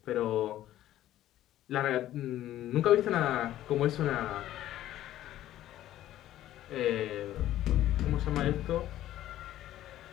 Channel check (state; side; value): quieter; right; 13.3 dB